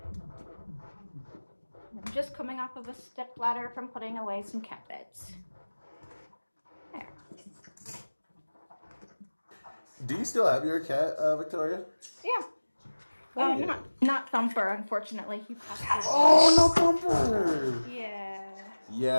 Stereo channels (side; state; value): both; inverted; correlation -1.00